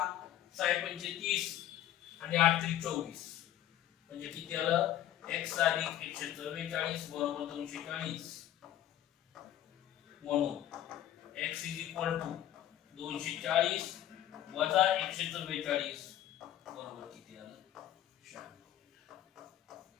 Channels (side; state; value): right; quieter; 12.2 dB